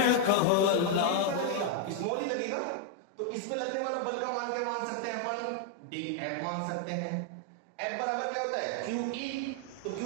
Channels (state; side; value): different; both; correlation 0.00